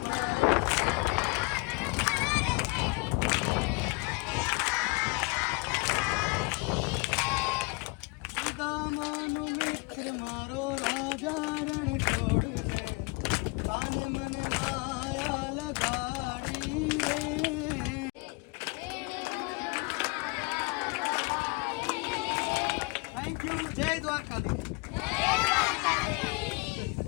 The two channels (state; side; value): quieter; right; 28.9 dB